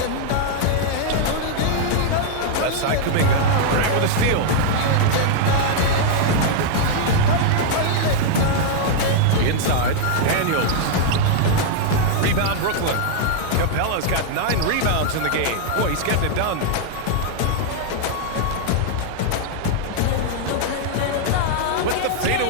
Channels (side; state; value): both; different; correlation -0.01